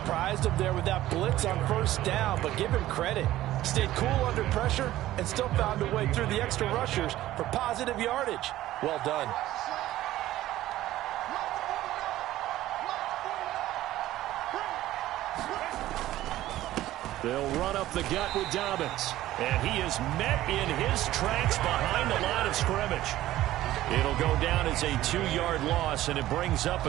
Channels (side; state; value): left; quieter; 14.8 dB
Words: him there with that blitz on 1st down, but give him credit. Stayed cool under pressure and still found a way through the extra rushers for positive yardage. Well done. They'll run up the gut with Dobbins, and he is met in his tracks behind the line of scrimmage. It'll go down as a 2-yard loss, and it brings up